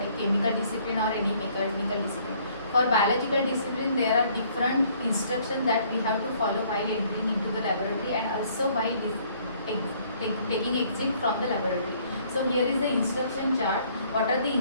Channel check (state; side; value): inverted; both; correlation -0.62